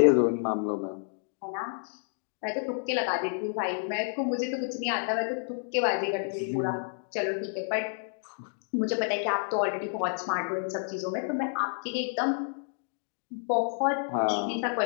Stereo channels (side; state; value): right; silent; digital silence